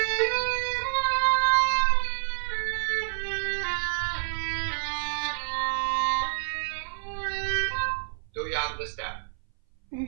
Do you understand?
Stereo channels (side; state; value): left; silent; 59 dB below the other